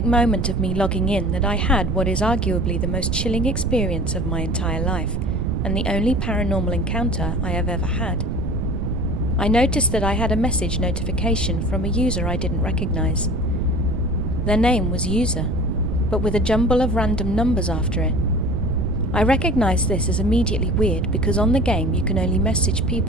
moment of me logging in that I had what is arguably the most chilling experience of my entire life, and the only paranormal encounter I have ever had. I noticed that I had a message notification from a user I didn't recognize. Their name was User, but with a jumble of random numbers after it. I recognized this as immediately weird because on the game you can only message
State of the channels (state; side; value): noise; right; rumble, 1 dB below the sound